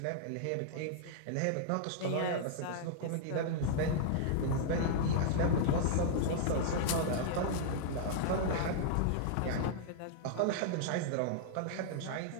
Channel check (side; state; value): both; different; correlation -0.01